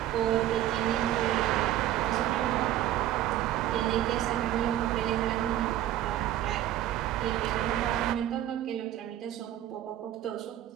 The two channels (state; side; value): quieter; left; 12.7 dB